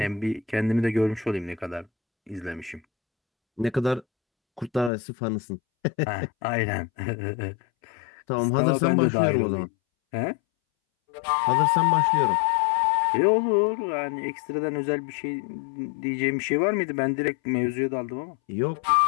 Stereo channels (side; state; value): right; drops out; at 4.9 s